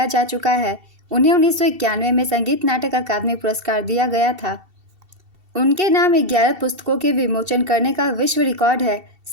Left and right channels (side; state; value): left; late; 2.7 ms